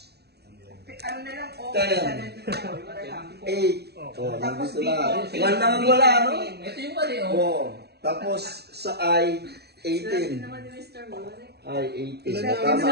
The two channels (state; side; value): late; left; 0.48 ms